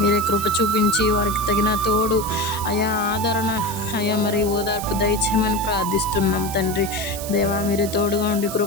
కృప చూపించి వారికి తగిన తోడు అయా ఆదరణ అయ్యా మరి ఓదార్పు దయచేయమని ప్రార్థిస్తున్నాం తండ్రి. దేవా మీరే తోడుగా ఉండి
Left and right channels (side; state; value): right; noise; hiss, 10 dB below the sound